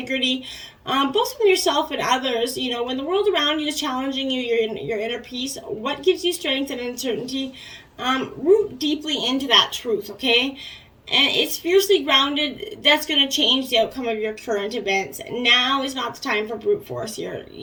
Both from yourself and others. When the world around you is challenging you, your inner peace, what gives you strength and uncertainty, root deeply into that truth, okay? And it's fiercely grounded. That's going to change the outcome of your current events. Now is not the time for brute force here.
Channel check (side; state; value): both; identical; correlation 1.00